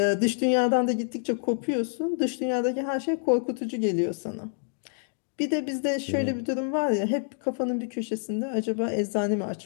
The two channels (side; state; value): right; silent; digital silence